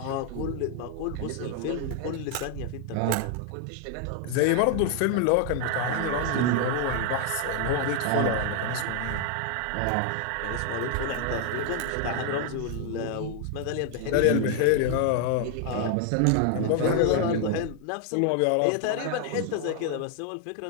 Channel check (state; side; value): different; both; correlation 0.00